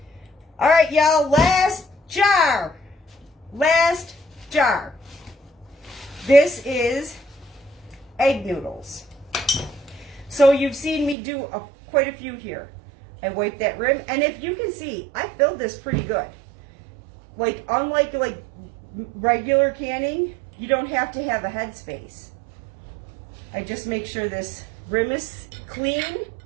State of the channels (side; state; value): left; drops out; at 11.2 s